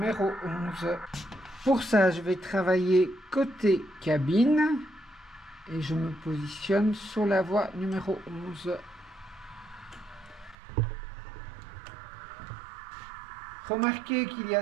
11. Pour ça, je vais travailler côté cabine et je me positionne sur la voie numéro 11. Remarquez qu'il y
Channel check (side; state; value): left; drops out; at 10.6 s